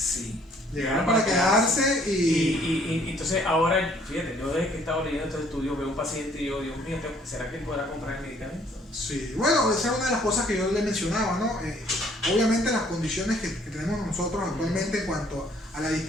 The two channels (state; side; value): normal; both; correlation 0.61